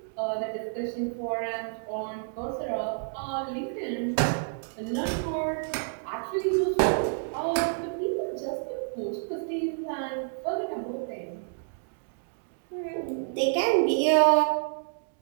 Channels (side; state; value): left; silent; digital silence